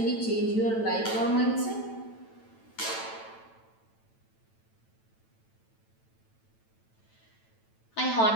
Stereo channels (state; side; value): late; right; 9.0 ms